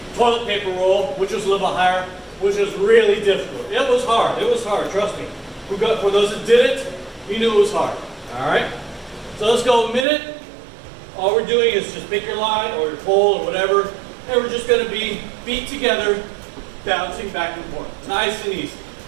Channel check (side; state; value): left; drops out; at 10.1 s